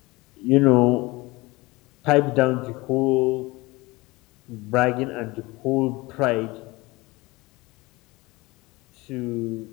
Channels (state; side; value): quieter; right; 22.4 dB